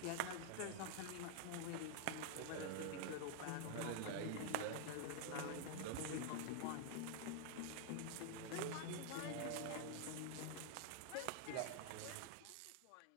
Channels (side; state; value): both; different; correlation 0.00